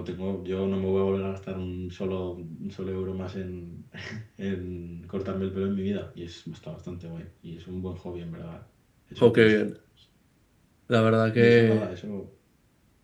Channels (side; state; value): both; identical; correlation 1.00